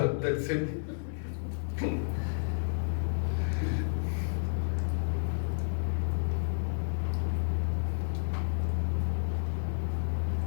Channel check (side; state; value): right; silent; 57 dB below the other